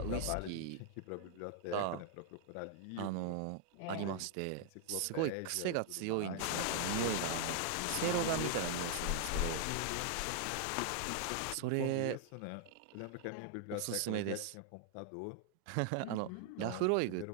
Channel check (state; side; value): different; both; correlation 0.00